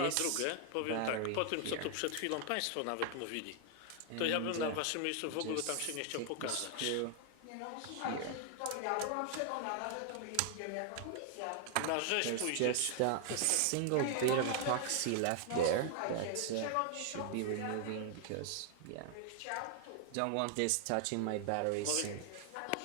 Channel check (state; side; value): different; both; correlation 0.00